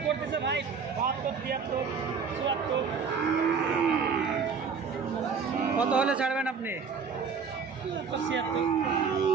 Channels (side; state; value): left; quieter; 5.8 dB